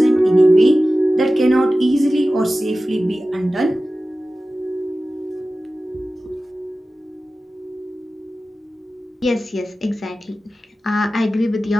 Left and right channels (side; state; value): both; normal; correlation 0.95